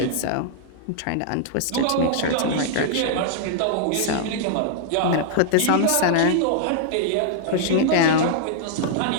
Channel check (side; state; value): both; different; correlation -0.01